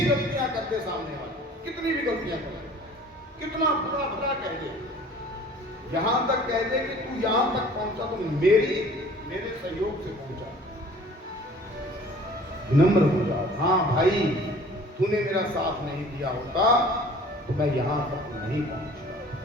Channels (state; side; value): normal; both; correlation 0.49